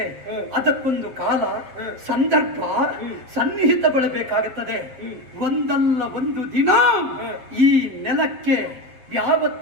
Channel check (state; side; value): late; left; 7.9 ms